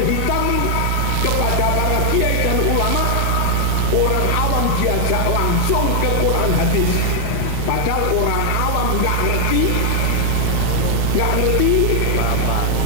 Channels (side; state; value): both; different; correlation 0.00